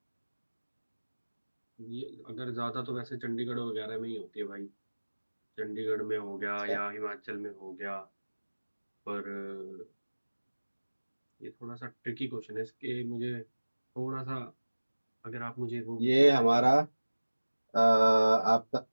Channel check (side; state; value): both; inverted; correlation -1.00